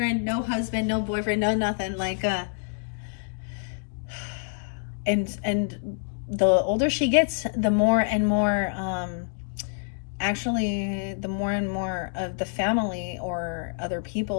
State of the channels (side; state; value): right; silent; digital silence